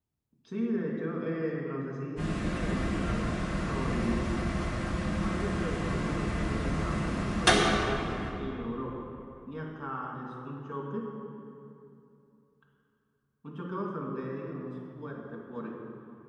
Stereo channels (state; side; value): identical; both; correlation 1.00